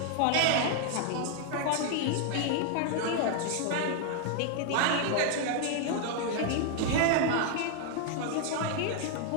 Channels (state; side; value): different; both; correlation 0.00